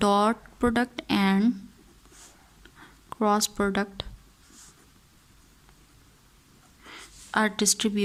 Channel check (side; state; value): both; identical; correlation 1.00